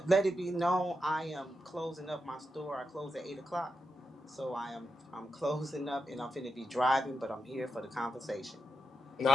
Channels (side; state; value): both; normal; correlation 0.86